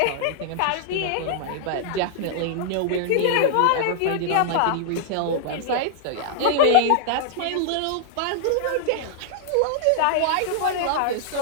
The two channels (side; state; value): both; different; correlation -0.01